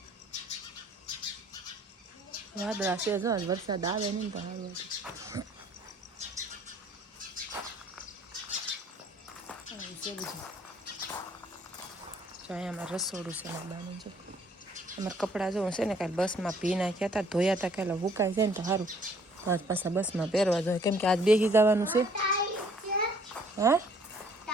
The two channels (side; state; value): both; normal; correlation 0.60